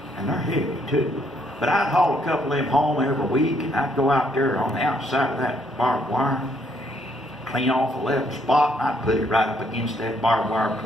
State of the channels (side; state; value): both; normal; correlation 0.70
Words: And they're heavy, too. But I'd haul a couple of them home every week, and I'd go out there on the outside of that barbed wire, clean off a level spot, and I'd put it right up against that barbed wire